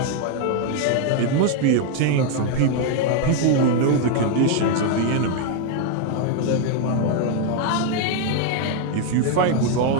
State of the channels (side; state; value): both; different; correlation 0.01